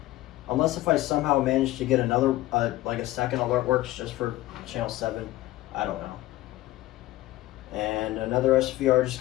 Unless if I somehow manage to get another, like a second AlertWorks just for channel 7, I don't know. And another SVR just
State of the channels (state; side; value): quieter; right; 16.8 dB